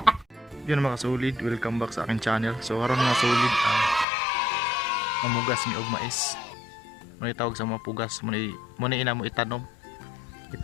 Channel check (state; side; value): drops out; right; at 4.0 s